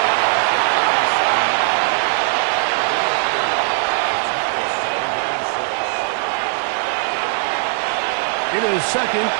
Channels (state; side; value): silent; left; digital silence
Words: It is 2nd